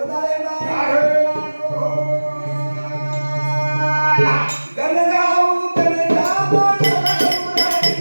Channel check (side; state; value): both; inverted; correlation -1.00